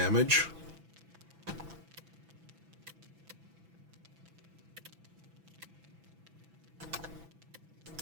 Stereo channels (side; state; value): left; late; 6.0 ms